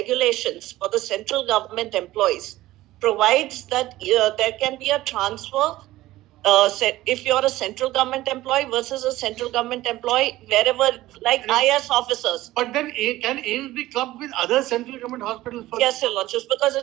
for the central government employees provides that there can be a transfer if you're a central government employee versus a central government employee wherever, like IS officers. But then can aims be clubbed with other central government hospitals? Yes, Your Lordships, because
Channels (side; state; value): left; quieter; 16.4 dB